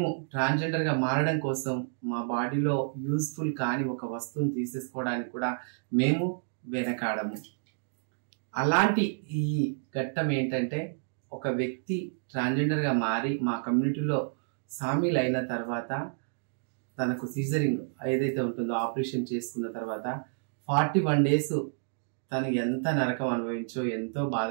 ట్రాన్స్జెండర్ గా మారడం కోసం మా బాడీలో యూస్ఫుల్ కాని ఒక వస్తువుని తీసేసుకోవడానికి కూడా మేము వెనకాడము. అలాంటి ఈ ఘట్టం ఏంటంటే, ఒక వ్యక్తి ట్రాన్స్జెండర్ గా మారి మా కమ్యూనిటీలో సామీల్ అయిన తర్వాత తనకు సీజరింగ్ ఏదైతే ఉంటుందో ఆపరేషన్ చేసుకున్న తర్వాత 41 days తను ఎంత నరకం అనుభవించో, ఎంతో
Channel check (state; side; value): silent; left; digital silence